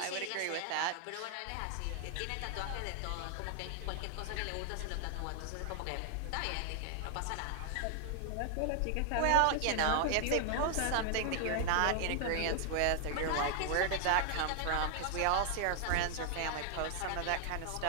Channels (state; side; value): different; both; correlation 0.00